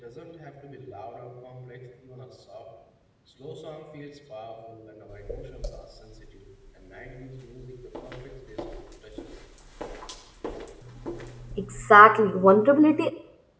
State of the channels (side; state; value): both; identical; correlation 1.00